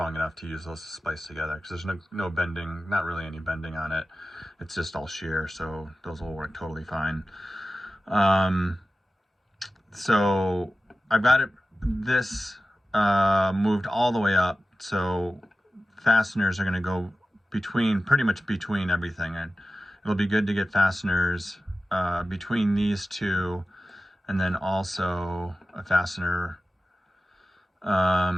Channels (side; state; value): both; normal; correlation 0.94